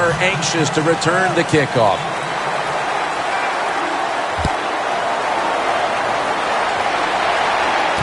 anxious to return the kickoff.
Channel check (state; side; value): identical; both; correlation 1.00